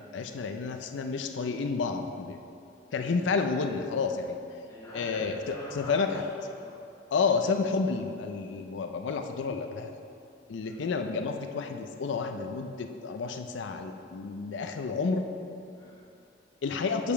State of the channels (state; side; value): quieter; right; 4.2 dB